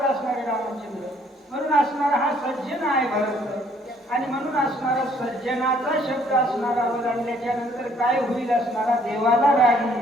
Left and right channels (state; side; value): normal; both; correlation 0.63